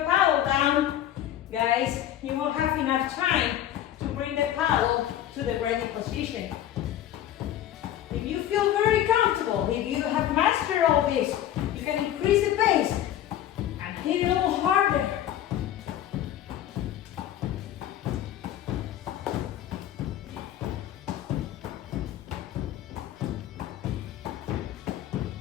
paddle down, guys, you won't have enough time to bring the paddle to the ready position. If you feel very comfortable, if you have mastered all this, you can increase the pace and hit a little harder.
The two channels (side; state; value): right; quieter; 11.7 dB